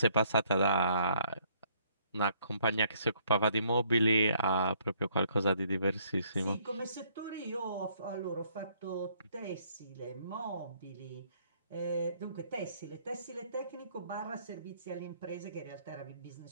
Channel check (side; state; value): both; inverted; correlation -0.65